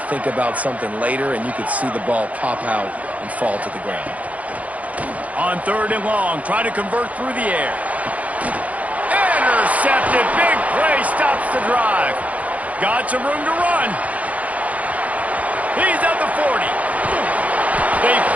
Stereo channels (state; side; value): late; left; 0.070 ms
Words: think about something later, and you could see the ball pop out and fall to the ground. On third and long, try to convert through the air. Intercepted. Big play stops the drive. Got some room to run. He's at the 40. They